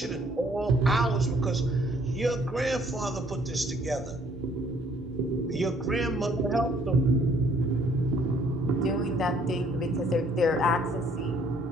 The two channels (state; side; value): normal; both; correlation 0.62